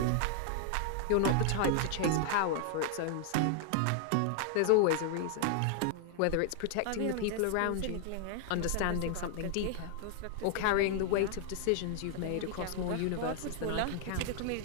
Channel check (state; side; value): different; both; correlation 0.00